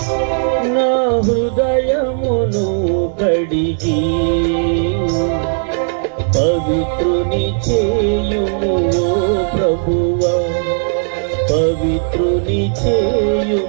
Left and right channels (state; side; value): silent; left; digital silence